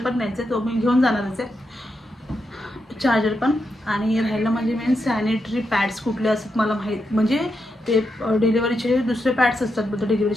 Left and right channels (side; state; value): both; normal; correlation 0.85